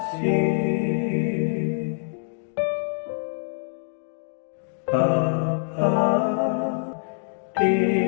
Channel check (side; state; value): right; silent; digital silence